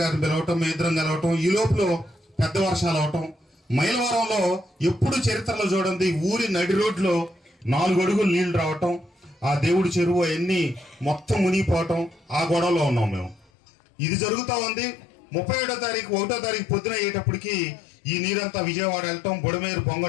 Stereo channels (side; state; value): right; drops out; at 13.5 s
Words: పిలవటం, మీ ఇద్దరం కలవటం, ఈ లోపల పెద్ద వర్షాలు అవటం. మైలవరంలో ఎప్పుడు చరిత్రలో చూడండి ఊరి నడి రోడ్లో 4 అడుగులు నీళ్లు రావటం, ఆ దేవుడి చెరువు అవన్నీ మొత్తం మునిగిపోవటం, ఆ గొడవలో ఉన్నాం మేము. ఇది జరుగుతూ ఉంది. 31వ తారీఖు పొద్దున అయ్యేటప్పటికి ఈ నీరంతా విజయవాడ వెళ్ళటం, బుడమేరు